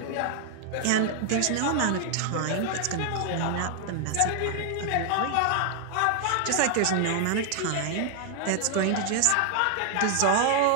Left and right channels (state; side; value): different; both; correlation 0.00